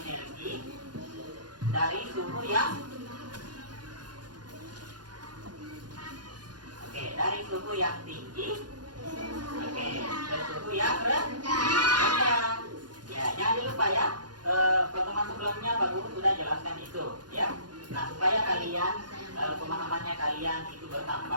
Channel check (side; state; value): left; late; 0.70 ms